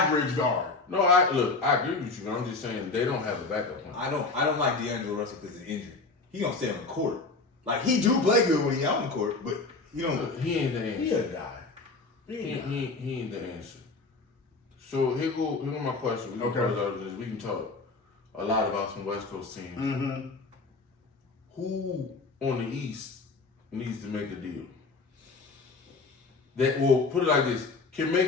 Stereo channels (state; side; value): quieter; right; 3.8 dB